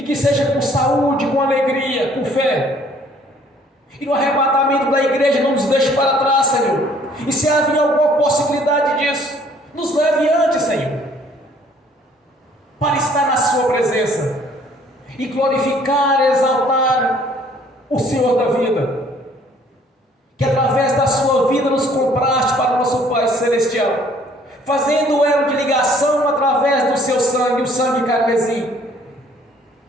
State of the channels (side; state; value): both; normal; correlation 0.59